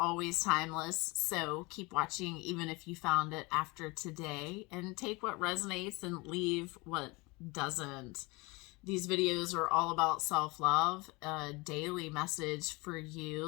timeless, so keep watching even if you found it after today, and take what resonates and leave what doesn't. These videos are all about self-love, a daily message for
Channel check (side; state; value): right; quieter; 25.5 dB